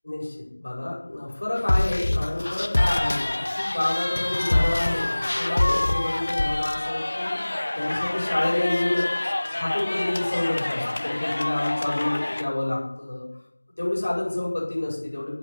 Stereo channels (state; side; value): inverted; both; correlation -1.00